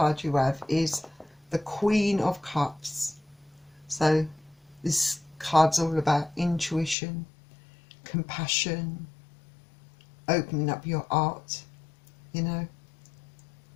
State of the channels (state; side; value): drops out; right; at 7.0 s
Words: you have is the Queen of Cups. So this card's all about intuition, compassion, opening up your heart, you know.